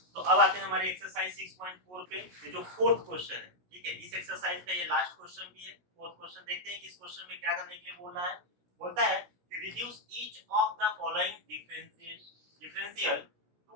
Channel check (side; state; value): left; late; 16 ms